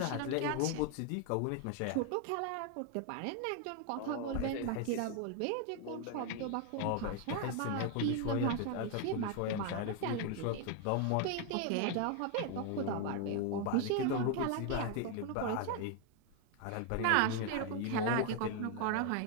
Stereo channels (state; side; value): different; both; correlation 0.01